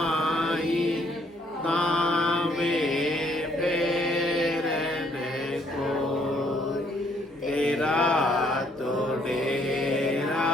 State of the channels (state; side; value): normal; both; correlation 0.67